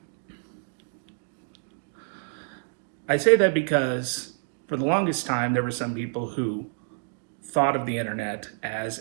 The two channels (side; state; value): left; silent; 60 dB below the other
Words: I say that because for the longest time, there were some people who thought of the internet as